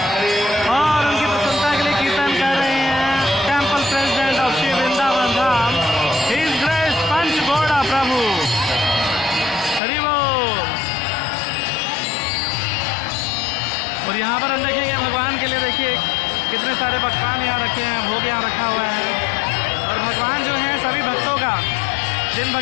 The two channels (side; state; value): right; drops out; at 9.8 s